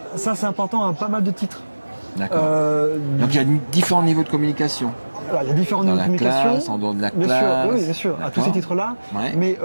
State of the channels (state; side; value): inverted; both; correlation -1.00